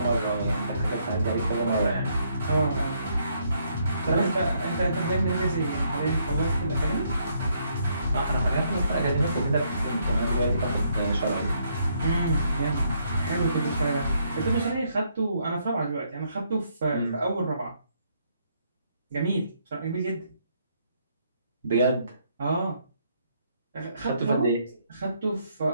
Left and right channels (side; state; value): both; inverted; correlation -0.72